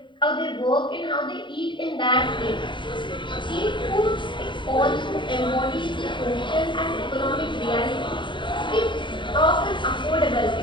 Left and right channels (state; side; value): late; right; 0.23 ms